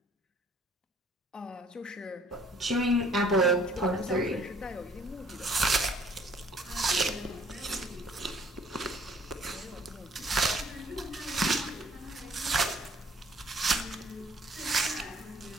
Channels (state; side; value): normal; both; correlation 0.58